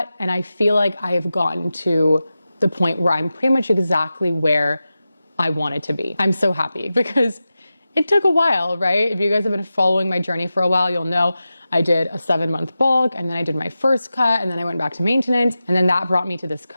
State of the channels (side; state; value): both; inverted; correlation -0.93